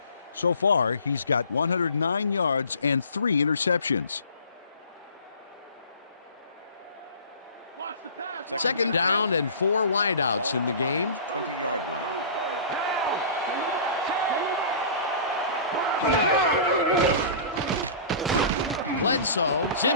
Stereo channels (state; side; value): inverted; both; correlation -0.41